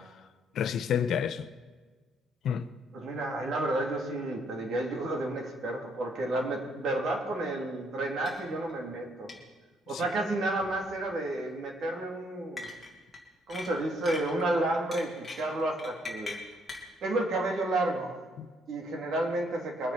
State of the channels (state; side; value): normal; both; correlation 0.68